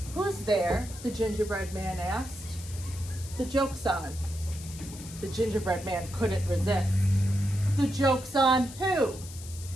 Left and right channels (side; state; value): left; noise; hiss, 15 dB below the sound